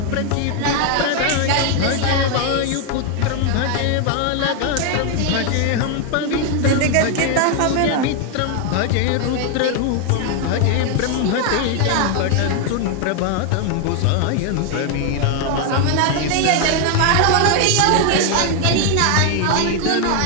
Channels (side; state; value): both; different; correlation 0.00